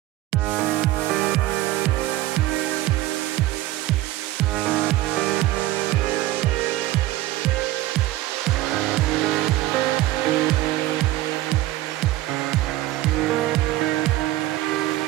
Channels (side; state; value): left; quieter; 16.0 dB